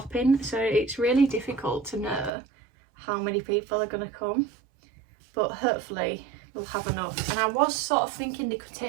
so it's really difficult to know how many people are going to come, but hopefully we'll have enough. And I was sort of thinking they could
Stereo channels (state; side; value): drops out; left; at 2.3 s